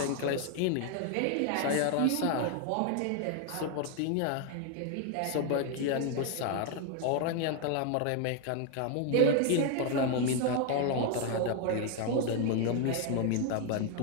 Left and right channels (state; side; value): different; both; correlation 0.01